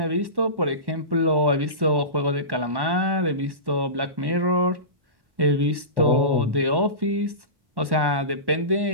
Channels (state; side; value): late; left; 1.1 ms